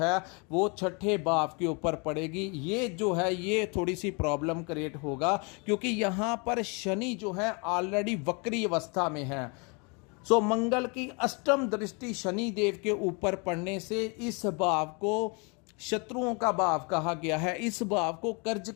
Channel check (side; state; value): right; quieter; 32.3 dB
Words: वो छठे भाव के ऊपर पड़ेगी। ये जो है ये थोड़ी सी प्रॉब्लम क्रिएट होगा, क्योंकि यहां पर शनि जो है ऑलरेडी वक्री अवस्था में है। सो मंगल की अष्टम दृष्टि शनि देव के ऊपर पड़ने से इस भाव को शत्रुओं का भाव कहा गया है, इस भाव को कर्ज